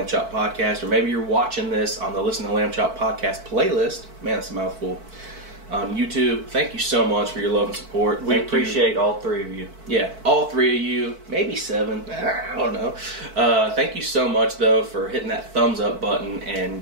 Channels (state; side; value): late; left; 4.5 ms